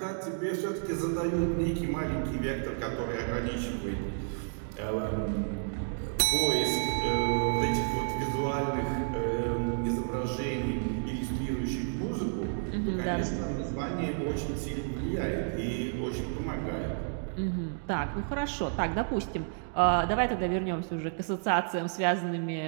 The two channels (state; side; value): silent; left; digital silence